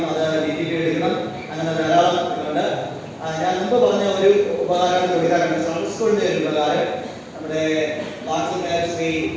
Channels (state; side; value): identical; both; correlation 1.00